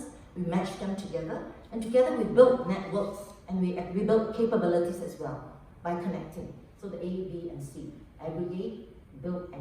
we match them together, and together we build networks and we build capabilities as well by connecting. So the A, B, and C, aggregate, build,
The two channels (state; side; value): identical; both; correlation 1.00